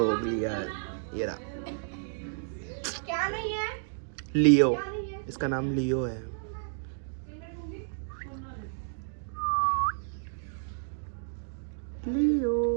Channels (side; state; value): left; silent; digital silence